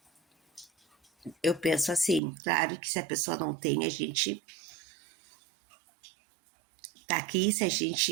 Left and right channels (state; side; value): drops out; left; at 2.2 s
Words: Eu penso assim, claro que se a pessoa não tem, a gente tá aqui, se a